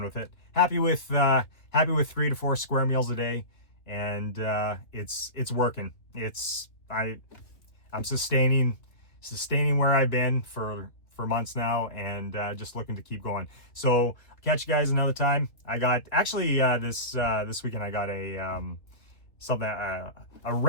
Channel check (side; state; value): right; late; 2.7 ms